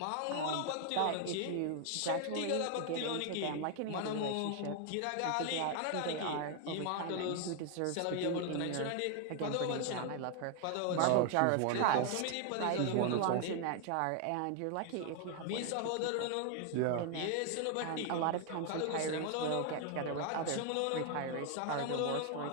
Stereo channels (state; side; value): different; both; correlation 0.00